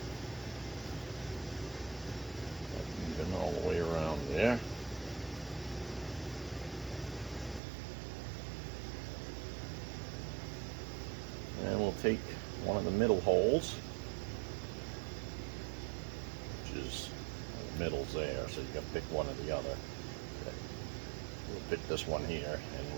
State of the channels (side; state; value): left; drops out; at 7.6 s